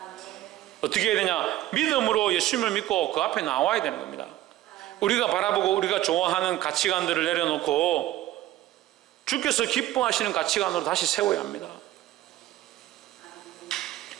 어떻게 해야 되냐? 믿음으로 예수님을 믿고 그 앞에 나와야 되는 겁니다. 우리가 바라보고 우리가 좋아하는 가치관들을 내려놓고 주께서 기뻐하시는 가치관으로 다시 세워야 합니다.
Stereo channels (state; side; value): quieter; left; 14.8 dB